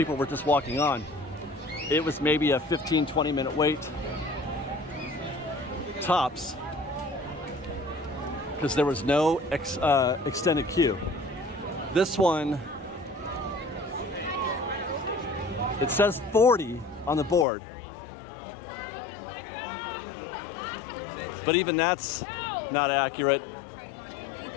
were just walking on. It was maybe a 15-20 minute wait, tops, because there was no extended queue. This one, it says 40 on the board, but even that's not accurate.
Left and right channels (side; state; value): right; drops out; at 17.4 s